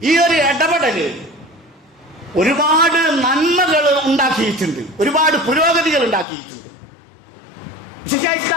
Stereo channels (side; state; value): right; drops out; at 6.2 s